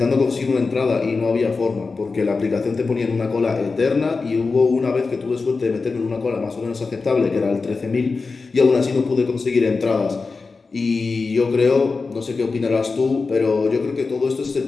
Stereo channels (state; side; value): quieter; right; 4.2 dB